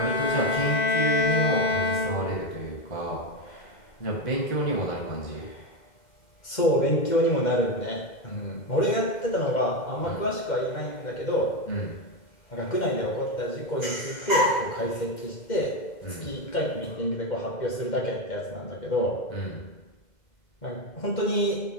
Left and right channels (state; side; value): late; right; 2.1 ms